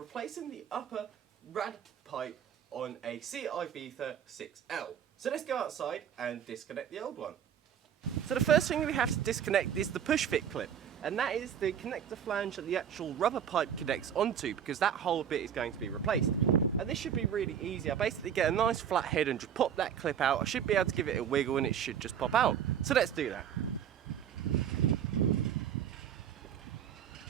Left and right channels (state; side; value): quieter; left; 8.7 dB